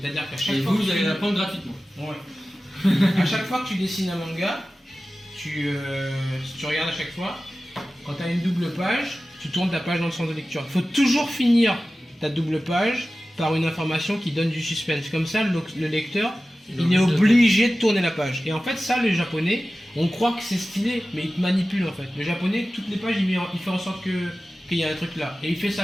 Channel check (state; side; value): normal; both; correlation 0.95